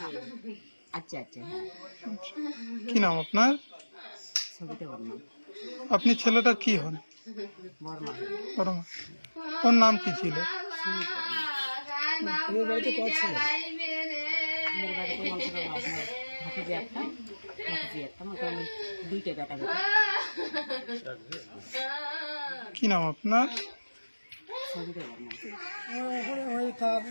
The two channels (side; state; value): both; inverted; correlation -1.00